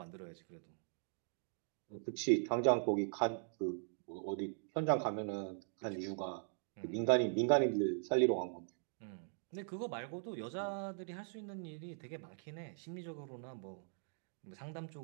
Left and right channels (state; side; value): silent; left; digital silence